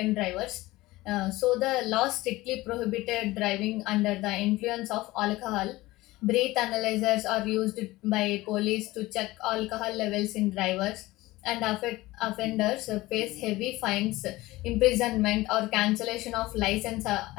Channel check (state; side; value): quieter; right; 18.9 dB